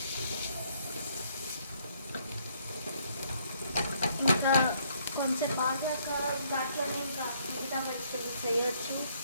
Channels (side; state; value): both; inverted; correlation -0.67